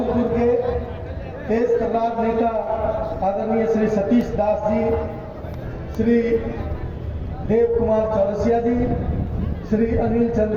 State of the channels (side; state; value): both; identical; correlation 1.00